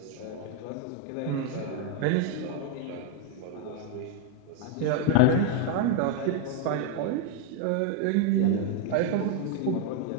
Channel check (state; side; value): different; both; correlation 0.01